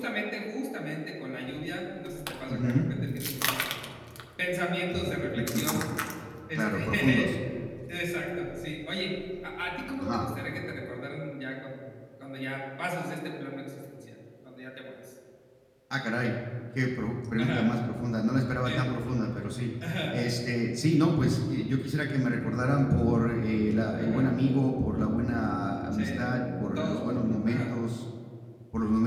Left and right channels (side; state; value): both; identical; correlation 1.00